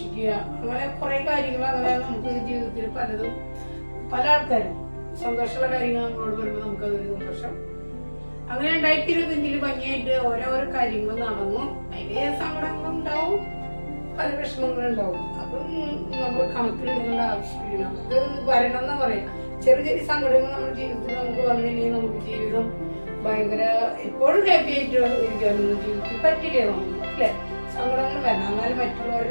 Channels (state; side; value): inverted; both; correlation -1.00